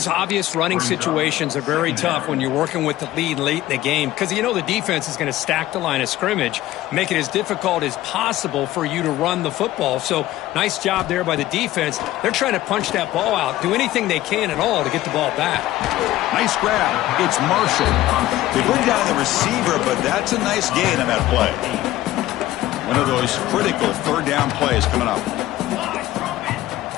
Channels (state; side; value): quieter; right; 15.3 dB